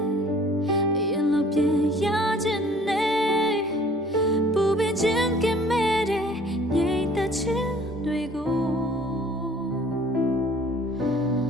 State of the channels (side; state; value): both; normal; correlation 0.53